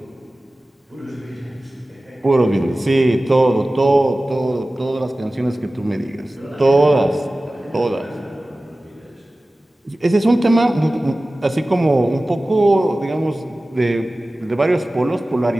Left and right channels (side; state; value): both; normal; correlation 0.97